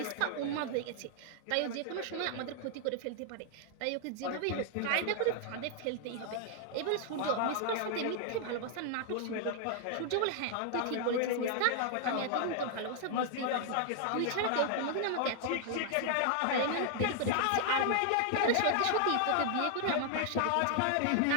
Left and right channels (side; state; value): both; different; correlation 0.00